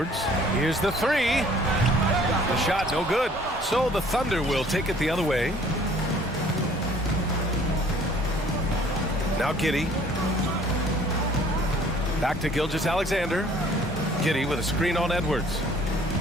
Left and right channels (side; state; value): both; normal; correlation 0.55